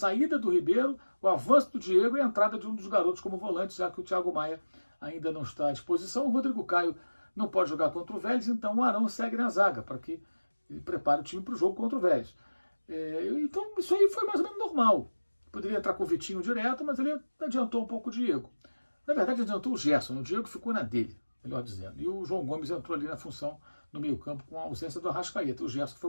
do Ribeiro, o avanço do Diego e a entrada de um dos garotos como volante, já que o Thiago Maia ainda não está à disposição. O Rodrigo Caio não pode jogar contra o Vélez, então o Arão segue na zaga, para que ele prepare o time para o jogo contra o Vélez. Então isso aí foi mais ou menos normal. Poderia entrar com o Vitinho direto, mas ele adiantou um pouco o Diego. Na verdade, adiantou o Gerson, o Diego ficou na dele, melhor dizendo. E o João Gomes entrou ali na função no meio-campo com a ausência do Arrascaeta. O Gerson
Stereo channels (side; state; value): both; inverted; correlation -1.00